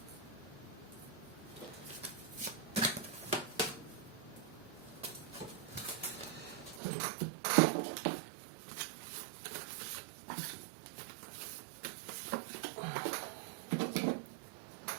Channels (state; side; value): drops out; left; at 6.8 s